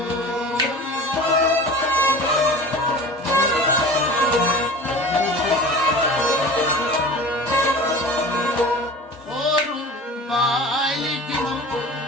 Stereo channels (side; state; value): both; normal; correlation 0.38